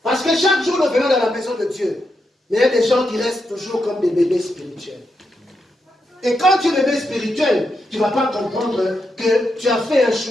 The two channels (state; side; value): normal; both; correlation 0.84